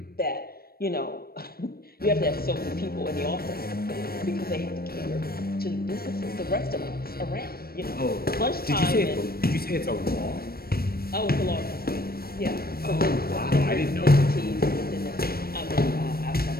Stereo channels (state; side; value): late; right; 0.44 ms